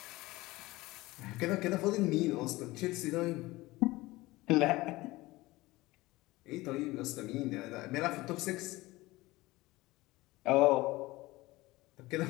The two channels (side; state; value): right; quieter; 19.8 dB